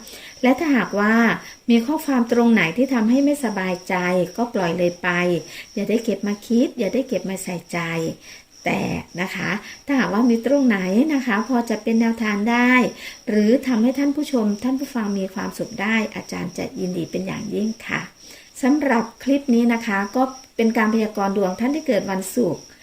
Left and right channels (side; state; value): both; identical; correlation 1.00